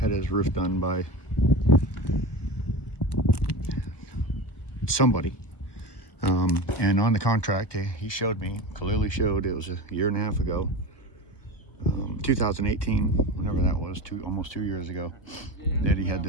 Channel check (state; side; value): late; right; 1.2 ms